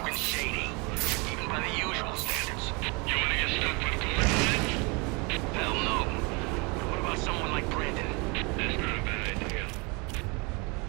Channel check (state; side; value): quieter; left; 29.5 dB